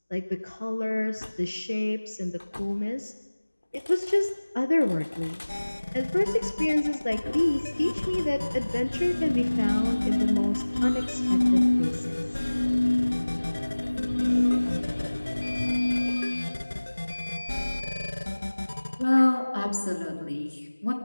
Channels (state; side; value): inverted; both; correlation -1.00